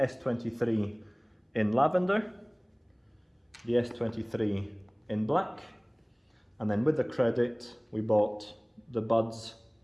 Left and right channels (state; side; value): identical; both; correlation 1.00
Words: in lavender, the S23 in black, and then with the credit, we bought the Buds